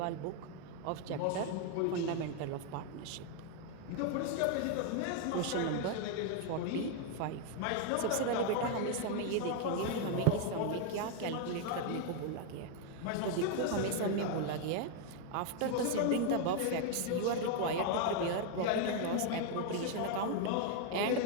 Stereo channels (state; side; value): different; both; correlation 0.01